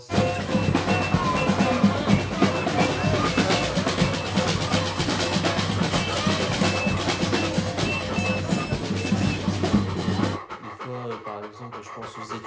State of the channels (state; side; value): identical; both; correlation 1.00